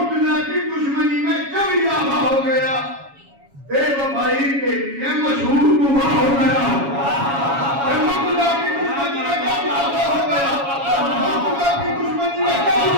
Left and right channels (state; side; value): late; left; 7.2 ms